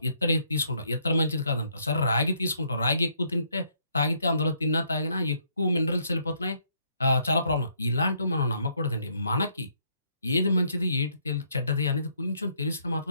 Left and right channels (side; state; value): both; inverted; correlation -0.71